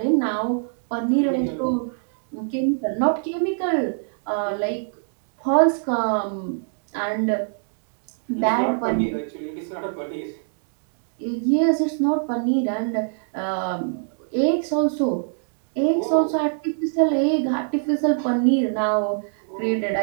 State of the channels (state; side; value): silent; left; digital silence